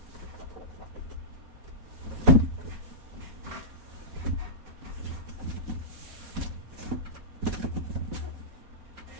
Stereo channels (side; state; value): left; late; 4.1 ms